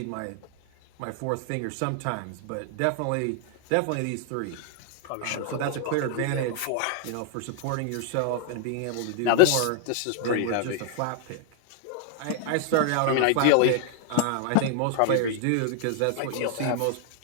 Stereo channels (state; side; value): different; both; correlation 0.00